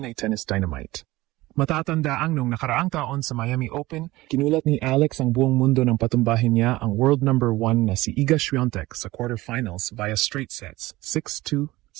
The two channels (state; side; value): quieter; left; 18.8 dB